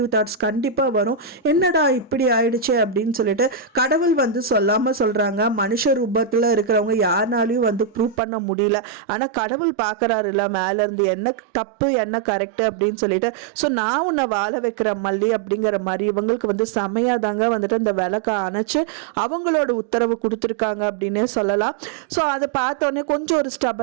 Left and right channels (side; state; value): left; drops out; at 8.2 s